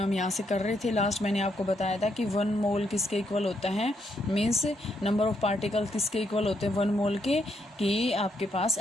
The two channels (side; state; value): both; normal; correlation 0.77